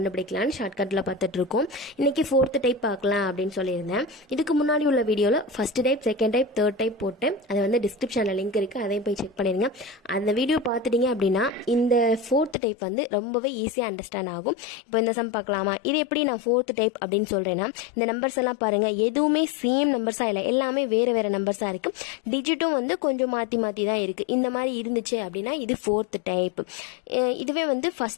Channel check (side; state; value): right; drops out; at 12.6 s